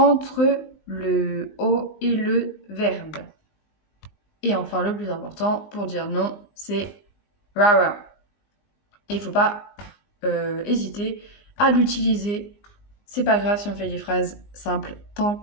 le o et le verbe. Et enfin, le plus important, pour dire non, c'est rara. Et il ne faut pas hésiter à l'utiliser. C'est pas grave si on fait des phrases simples, tant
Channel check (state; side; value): late; right; 19 ms